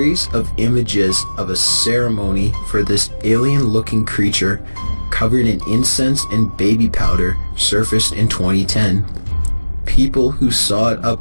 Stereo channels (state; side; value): inverted; both; correlation -1.00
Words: of images of a ceremony for this alien-looking creature covered in incense and baby powder surfaced in 2010. People who saw it